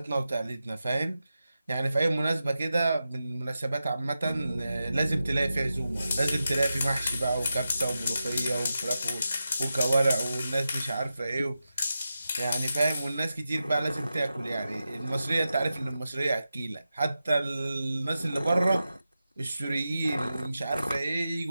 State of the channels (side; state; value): both; inverted; correlation -0.91